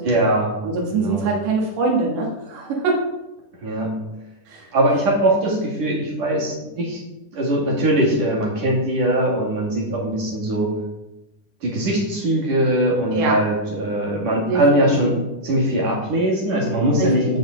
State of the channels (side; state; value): left; late; 10 ms